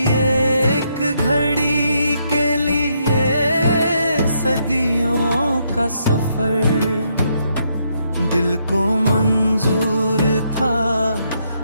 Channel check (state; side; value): inverted; both; correlation -0.76